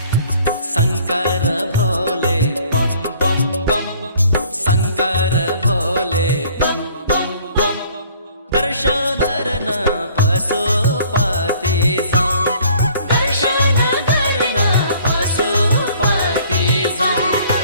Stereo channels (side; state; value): both; inverted; correlation -0.56